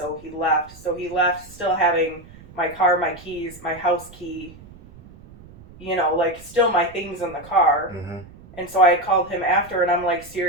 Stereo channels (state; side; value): noise; right; rumble, 21 dB below the sound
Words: he left. So he left still having my car, my keys, my house key, like still my things in the car. Mm-hmm. And so I had called him after, and I'm like,